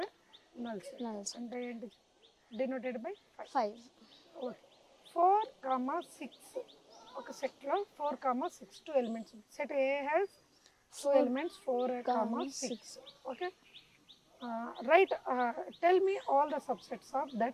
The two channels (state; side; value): identical; both; correlation 1.00